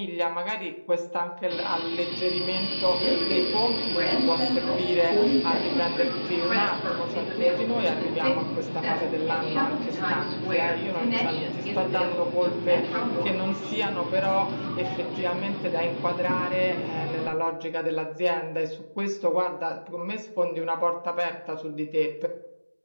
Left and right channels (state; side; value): inverted; both; correlation -1.00